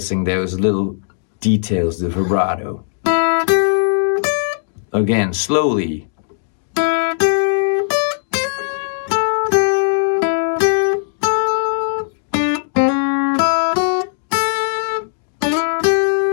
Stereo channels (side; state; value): right; silent; digital silence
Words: those little details, the vibrato. Again, slowly.